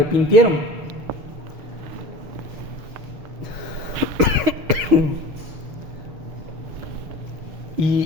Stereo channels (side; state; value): left; late; 6.4 ms